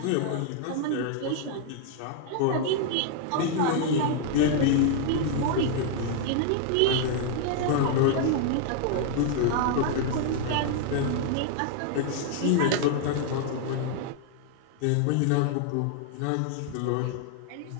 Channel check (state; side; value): different; both; correlation 0.00